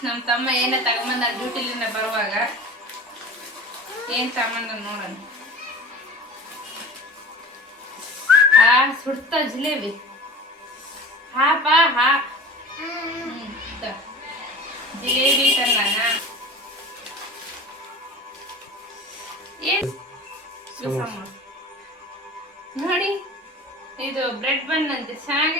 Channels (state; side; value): normal; both; correlation 0.37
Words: ನಮ್ಮ ತಮ್ಮ ಏನೇ ತಗೊಂಬಂದ ಡ್ಯೂಟಿಲಿಂದ ಬರುವಾಗ ಏನ್ ತಗೊಂಬಂದ ನೋಡೋಣ. ಸುಡ್ತ ಜಿಲೇಬಿ. ಹಾ ಬಾ ಹಾ. ಜಿಲೇಬಿ ತಂದಾನ. ಏನ್ ನೋಡಿ, ಇದು ಬ್ರೆಡ್ ಬನ್ ಅಂತೆ.